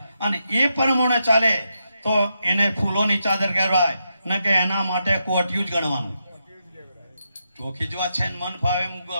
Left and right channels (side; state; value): both; inverted; correlation -0.84